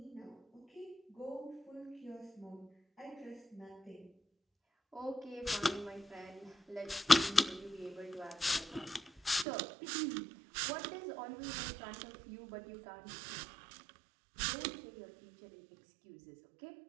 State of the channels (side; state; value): left; drops out; at 9.5 s